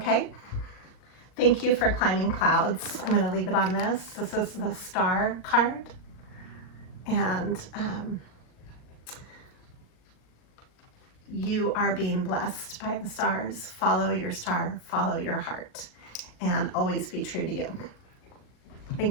Thank you for climbing clouds. I'm going to leave it on this. This is the star card. And you are being blessed by the stars. Follow your star, follow your heart, and always be true to you.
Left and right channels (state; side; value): late; right; 39 ms